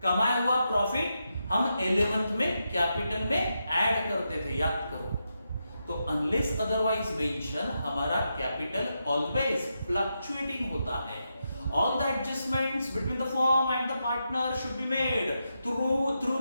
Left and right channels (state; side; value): inverted; both; correlation -0.85